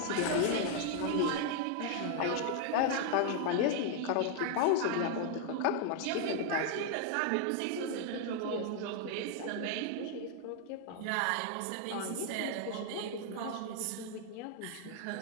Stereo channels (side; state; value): both; different; correlation 0.00